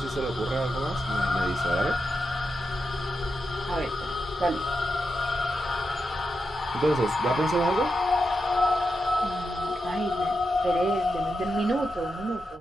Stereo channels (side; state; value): both; normal; correlation 0.87